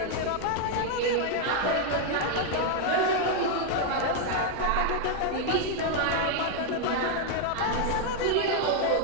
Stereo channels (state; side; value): different; both; correlation 0.00